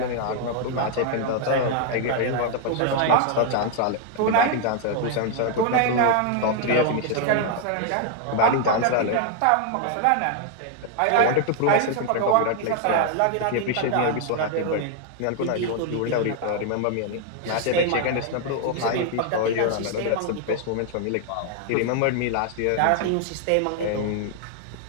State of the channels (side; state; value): both; different; correlation 0.00